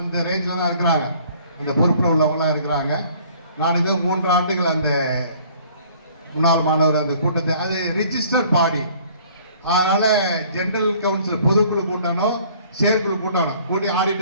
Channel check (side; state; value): both; inverted; correlation -0.55